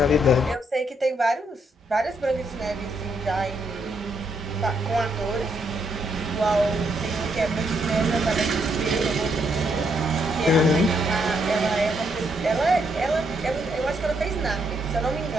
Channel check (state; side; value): normal; both; correlation 0.76